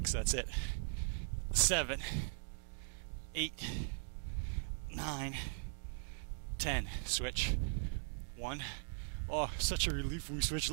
that's it. 7, 8, 9, 10. Switch. 1, Oh, such a relief when we switch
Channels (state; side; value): silent; left; digital silence